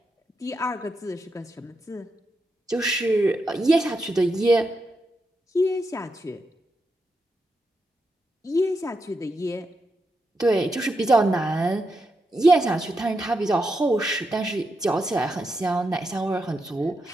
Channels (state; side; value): normal; both; correlation 0.85